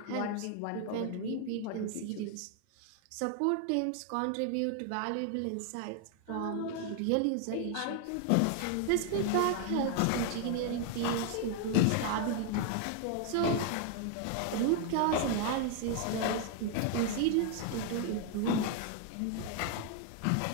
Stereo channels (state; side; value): different; both; correlation 0.00